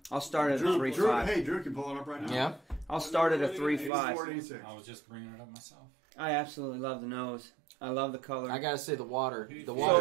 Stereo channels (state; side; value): drops out; left; at 3.9 s